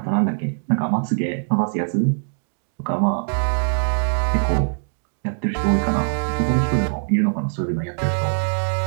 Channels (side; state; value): left; silent; 64 dB below the other